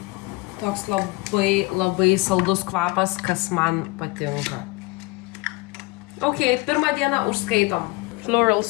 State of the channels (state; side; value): quieter; right; 24.1 dB